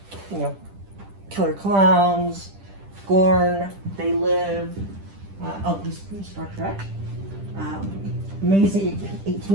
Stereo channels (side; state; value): left; late; 10 ms